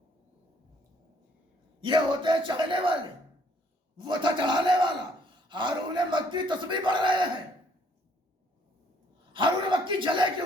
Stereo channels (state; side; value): normal; both; correlation 0.65